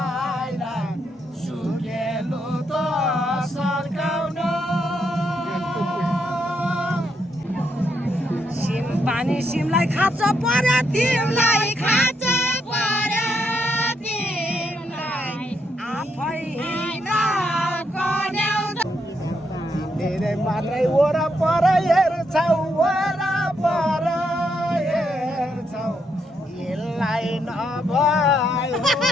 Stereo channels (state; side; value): normal; both; correlation 0.78